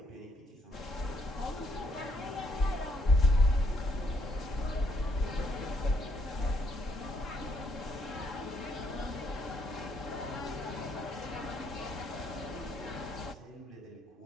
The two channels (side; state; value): both; normal; correlation 0.72